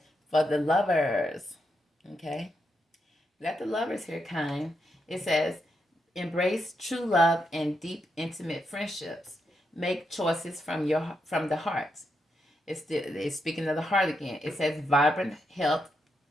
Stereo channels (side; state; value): both; normal; correlation 0.83